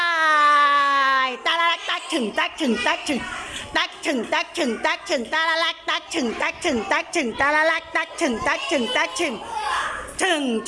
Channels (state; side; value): identical; both; correlation 1.00